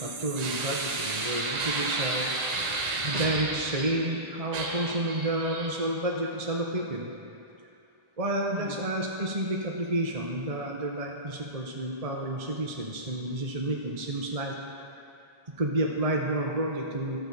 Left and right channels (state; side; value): late; left; 1.8 ms